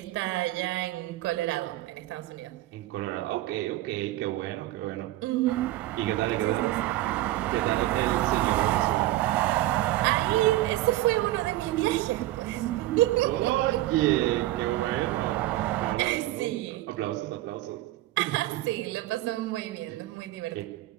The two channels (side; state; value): left; quieter; 16.1 dB